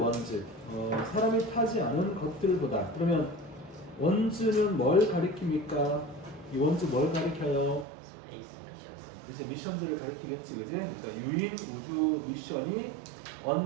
사람이 타지 않은 것들보다. 그러면 원즈는 뭘 가리킵니까? 이 원즈 뭘 가리켜요? 이제 미션들을 가리키겠지, 그지? 그러니까 유인 우주 미션이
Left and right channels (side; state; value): left; drops out; at 7.9 s